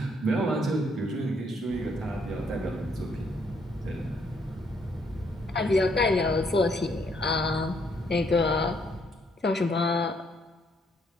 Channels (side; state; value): both; normal; correlation 0.70